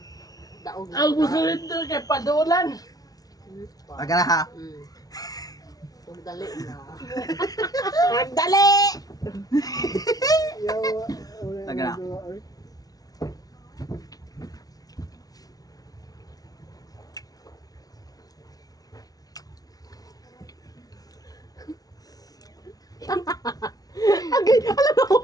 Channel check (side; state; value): right; late; 0.18 ms